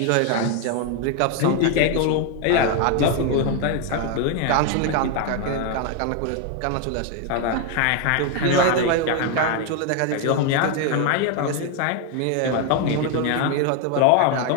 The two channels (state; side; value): different; both; correlation 0.01